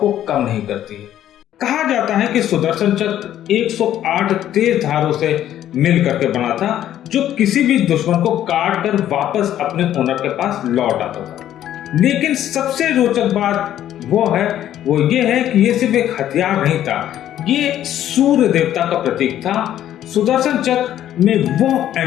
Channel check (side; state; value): right; quieter; 11.7 dB